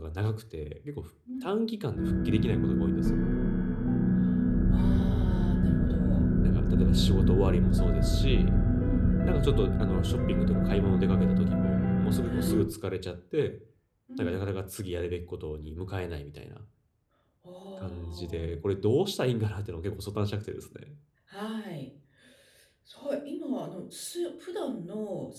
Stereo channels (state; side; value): identical; both; correlation 1.00